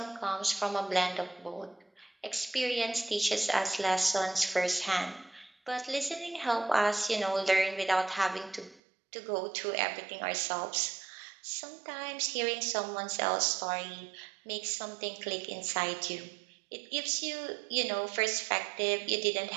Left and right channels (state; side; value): drops out; left; at 8.8 s